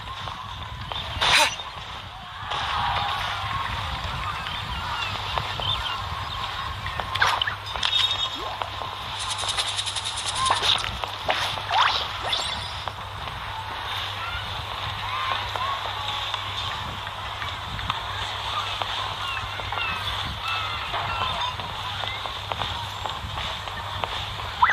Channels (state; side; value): identical; both; correlation 1.00